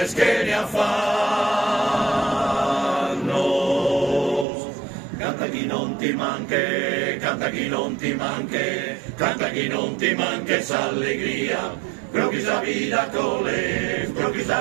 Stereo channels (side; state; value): left; drops out; at 4.5 s